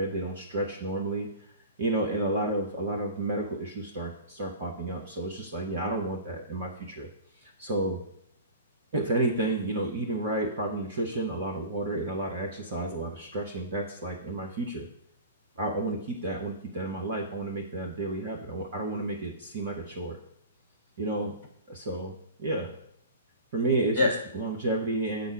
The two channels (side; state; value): both; inverted; correlation -0.35